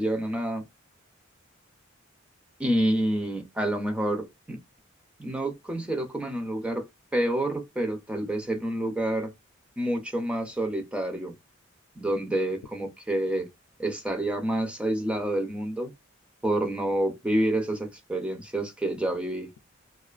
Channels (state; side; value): normal; both; correlation 0.84